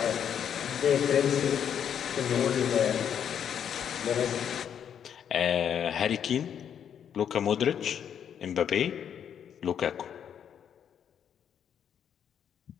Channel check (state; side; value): quieter; right; 8.6 dB